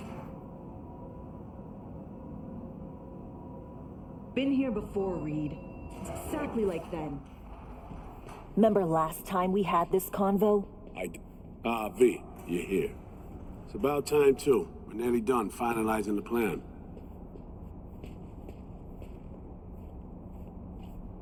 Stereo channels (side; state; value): both; identical; correlation 1.00